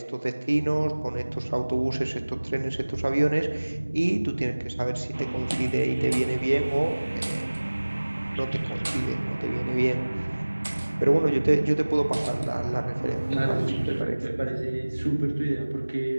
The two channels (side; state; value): both; inverted; correlation -1.00